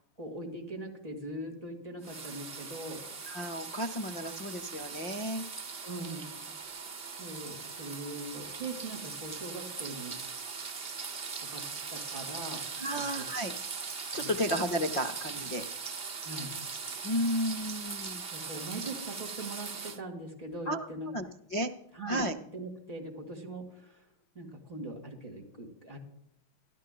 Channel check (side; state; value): right; late; 5.0 ms